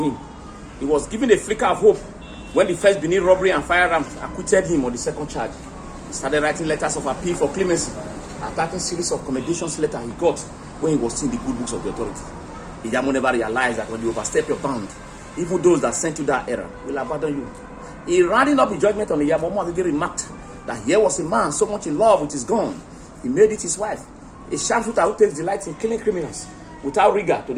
him. He was given a flicker of hope when the first Benin robbery and firearms acquitted him on the second charge. He started writing letters of appeal for clemency, attacking series of commendations letters he got when he was seeing the good books of the authority. Iyamu never realized that when you overstep your bound, even those that sent you that error will abandon you. He rounding up his judgment on Iyamu, Omagege remarked that here was a man so much in love with his gun, he made it his wife. A sharpshooter who takes delight in killing criminals without rigor to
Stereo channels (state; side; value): identical; both; correlation 1.00